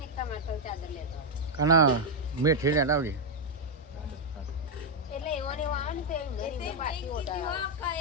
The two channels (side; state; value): both; normal; correlation -0.01